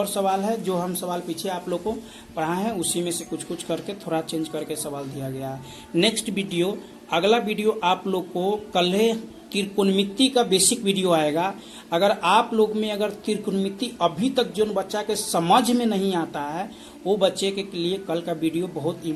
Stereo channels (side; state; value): both; identical; correlation 1.00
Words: सवाल है, जो हम सवाल पीछे आप लोग को पढ़ाए हैं उसी में से कुछ कुछ करके थोड़ा चेंज करके सवाल दिया गया है। नेक्स्ट वीडियो, अगला वीडियो आप लोग को कल त्रिकोणमिति का बेसिक वीडियो आएगा। अगर आप लोग में अगर त्रिकोणमिति अभी तक जो बच्चा के समझ में नहीं आता है, वो बच्चे के लिए कल का वीडियो बहुत